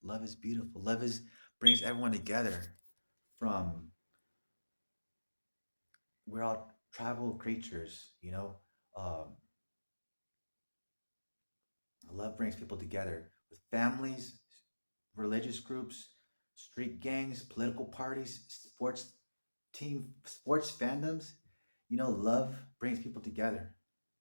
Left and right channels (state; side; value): inverted; both; correlation -1.00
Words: Love is beautiful. Love is brings everyone together. From we're all tribal creatures, Um, love brings people together with families, religious groups, street gangs, political parties, sports fandoms. Love brings people together.